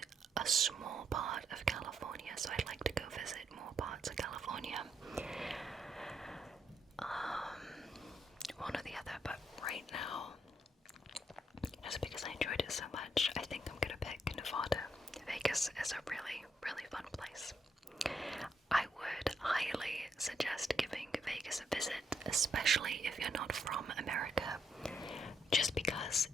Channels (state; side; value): normal; both; correlation 0.76